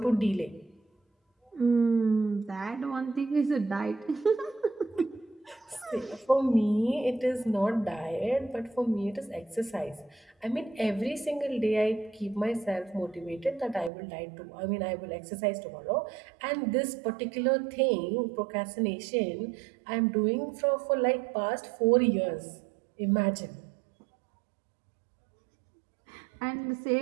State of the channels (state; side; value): drops out; left; at 13.9 s